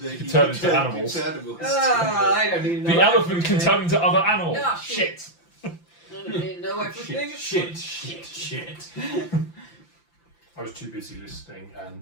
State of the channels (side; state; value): right; late; 5.9 ms